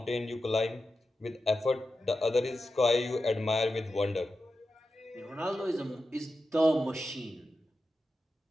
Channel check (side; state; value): both; normal; correlation 0.91